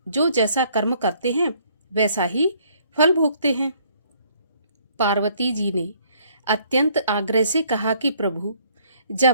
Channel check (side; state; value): both; inverted; correlation -0.63